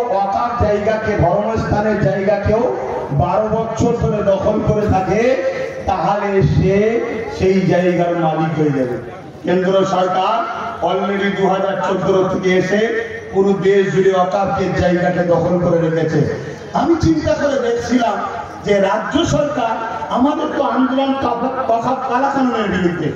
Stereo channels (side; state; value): both; identical; correlation 1.00